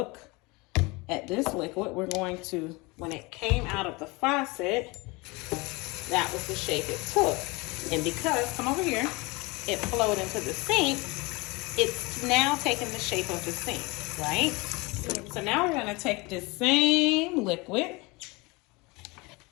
at this liquid. We're going to, when it came out of the faucet, that was the shape it took. And because, come over here, it flowed into the sink, it's now taking the shape of the sink, right? So now we're gonna take this same liquid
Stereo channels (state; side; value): quieter; right; 25.3 dB